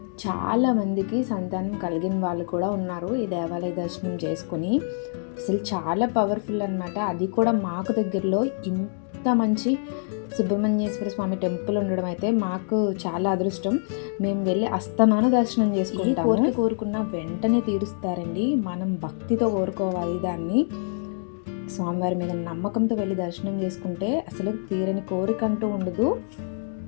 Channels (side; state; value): right; silent; digital silence